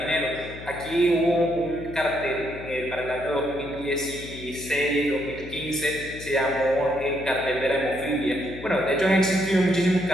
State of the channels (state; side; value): noise; left; hum, 13 dB below the sound